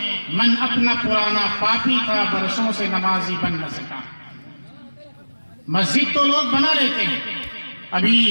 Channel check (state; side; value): inverted; both; correlation -1.00